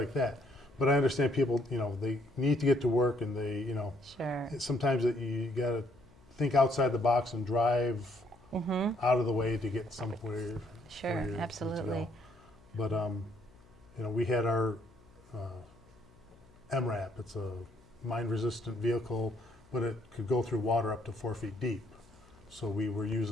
that. But I understand people, they need to get to work, and they, Sure. sometimes you got to think outside the box and drive out of the way to get somewhere. Sure, absolutely. But we had our MRAP. It's a mine-resistant vehicle, but it could go through water up to 4 feet deep. So we were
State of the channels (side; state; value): left; noise; hum, 26 dB below the sound